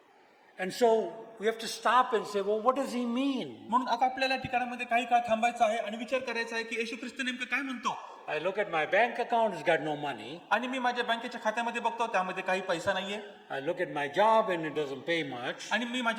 And so we have to stop and say, well, what does he mean? म्हणून आता आपल्याला ठिकाणामध्ये काही काळ थांबायचं आहे आणि विचार करायचा आहे की येशू ख्रिस्त नेमकं काय म्हणतो. I look at my bank account, it's got no money. आणि मी माझ्या बँकेच्या खात्यामध्ये बघतो त्यामध्ये काही पैसा नाहीये. I look at my job and it doesn't pay much. आणि मी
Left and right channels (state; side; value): identical; both; correlation 1.00